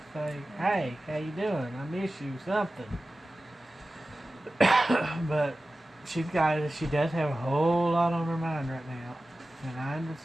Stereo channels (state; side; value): normal; both; correlation 0.95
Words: say, hey, how you doing? I miss you, something. But she does have a whole lot on her mind right now. And I